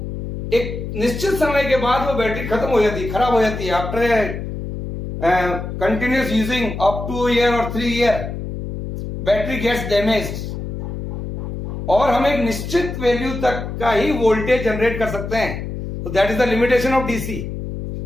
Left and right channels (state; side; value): noise; left; hum, 6 dB below the sound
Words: एक निश्चित समय के बाद वो बैटरी खत्म हो जाती है, खराब हो जाती है. After continuous using up to a year or 3 year, battery gets damaged. और हम एक निश्चित वैल्यू तक का ही वोल्टेज जनरेट कर सकते हैं. तो that is the limitation of DC.